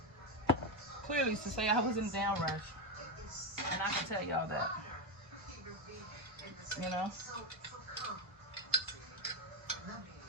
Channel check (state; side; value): normal; both; correlation 0.09